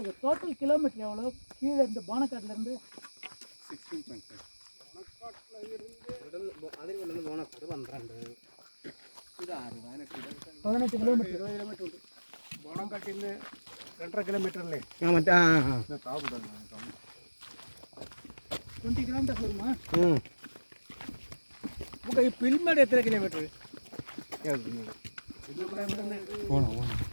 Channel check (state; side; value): inverted; both; correlation -1.00